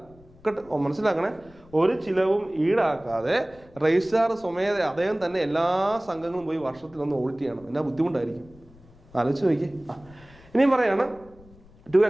മനസ്സിലാക്കണേ, ഒരു ചിലവും ഈടാക്കാതെ രജിസ്ട്രാർ സ്വമേധ അദ്ദേഹം തന്നെ എല്ലാ സംഘങ്ങളും പോയി വർഷത്തിലൊന്ന് ഓഡിറ്റ് ചെയ്യണം. എന്നാ ബുദ്ധിമുട്ടായിരിക്കും, ആലോചിച്ച് നോക്കി. ഇനിയും പറയാണ് to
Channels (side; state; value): left; noise; rumble, 25 dB below the sound